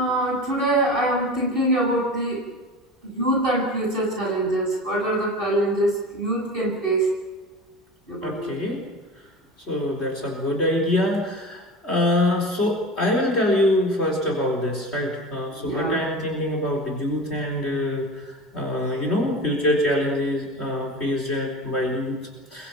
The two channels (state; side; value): normal; both; correlation 0.32